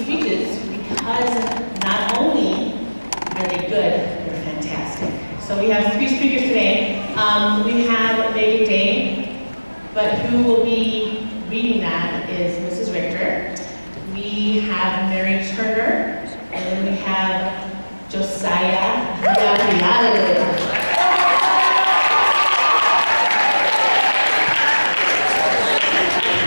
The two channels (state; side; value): inverted; both; correlation -1.00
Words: speeches because not only are they good, they're fantastic. So we have 3 speakers today. We have Meagan, but who will be reading that is Mrs. Richter. We have Mary Turner, and then we have Josiah Villarreal.